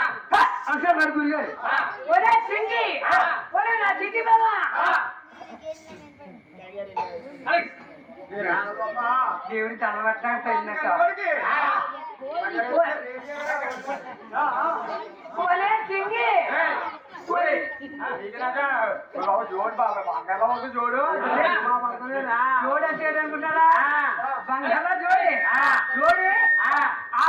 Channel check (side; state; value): both; identical; correlation 1.00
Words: అంటారు మరి గురుగారు. ఒరే చింగి, ఒరే నా చిట్టి బాబా దేవుడి తలబట్టాక తగినట్టు ఒరే చింగి జోడు బాబా బంగాళ జోడు జోడు అంటే అనుకుంటారా? బంగాళ జోడి జోడి